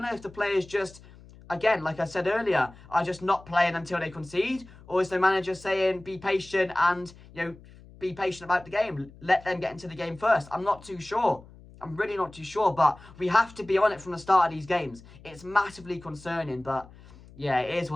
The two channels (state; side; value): noise; left; hum, 21 dB below the sound